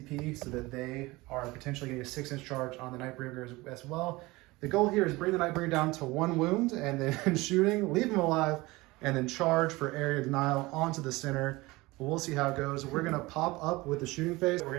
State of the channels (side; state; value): left; quieter; 21.5 dB